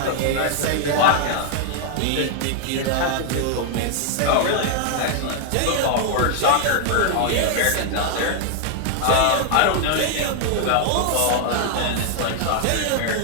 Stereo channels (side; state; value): both; different; correlation 0.00